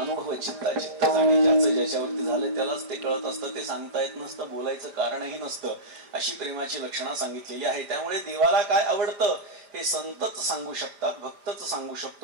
चित्ता चित्त जाणे. ज्याचं ज्याच्यावरती झालं त्यालाच ते कळत असतं. ते सांगता येत नसतं बोलायचं कारणही नसतं. अशी प्रेमाची लक्षणं सांगितलेली आहे. त्यामुळे देवाला काय आवडतं हे संतच सांगू शकतात भक्तच सांगू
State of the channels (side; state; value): left; late; 5.0 ms